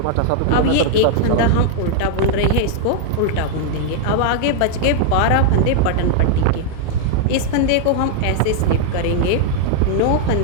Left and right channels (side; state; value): both; different; correlation 0.00